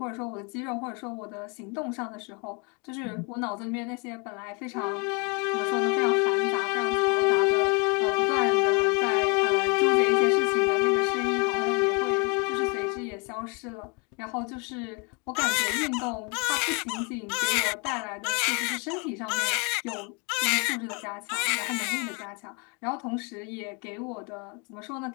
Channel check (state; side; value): quieter; right; 32.8 dB